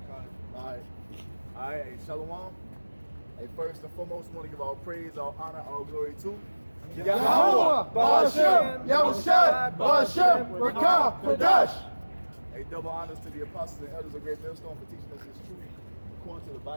God. All right, hey, Shalom. Hey, first and foremost, I want to give all praise, all honor, all glory to Yahweh, Ba'ashem, Yahushua, Ba'ashem, Rakah, Kadash. Hey, double honors to the apostles and elders of Great Millstone for teaching us this truth according to the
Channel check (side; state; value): both; inverted; correlation -1.00